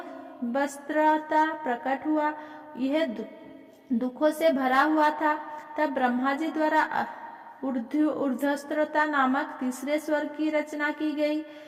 वस्त्रता प्रकट हुआ। यह दुखों से भरा हुआ था। तब ब्रह्मा जी द्वारा ऊर्ध्वस्त्रता नामक तीसरे स्वर्ग की रचना की गई।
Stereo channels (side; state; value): both; identical; correlation 1.00